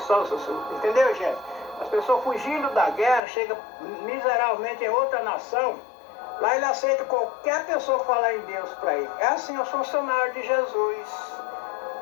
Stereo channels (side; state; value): right; drops out; at 3.2 s